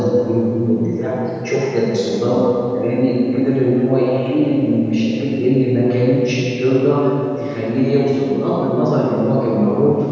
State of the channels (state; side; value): identical; both; correlation 1.00